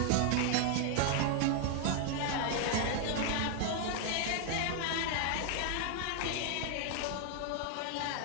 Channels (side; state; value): both; different; correlation 0.00